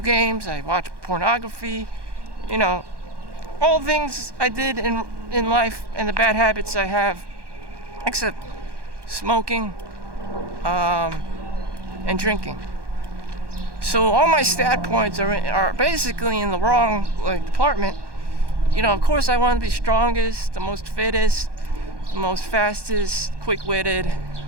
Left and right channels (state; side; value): late; left; 1.2 ms